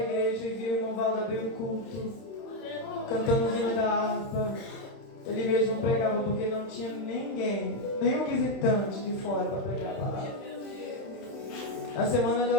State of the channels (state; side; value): late; right; 31 ms